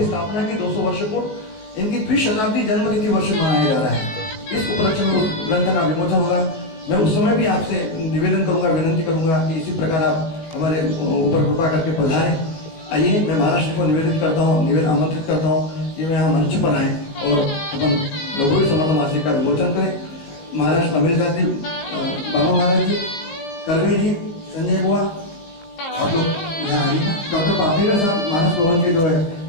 स्थापना की 200 वर्ष को, इनकी द्विशताब्दी जन्मतिथि वर्ष मनाया जा रहा है। इस उपलक्ष्य में उस ग्रंथ का विमोचन होगा। मैं उस समय भी आपसे निवेदन करूंगा, विनंती करूंगा कि इसी प्रकार आप हमारे ऊपर कृपा करके पधारें। आइए, मैं महाराज जी को निवेदित करता हूँ, आमंत्रित करता हूँ कि मैं यहाँ मंच पर आए और अपन लघु समर्थ मासिक का विमोचन करें। महाराज अमित जी, बाबा महाराज जी, करवे जी, संजय बुआ, आप लोग यहाँ आइए। डॉक्टर पापड़ेकर साहब मानस भवन के जो है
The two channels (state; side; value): late; right; 19 ms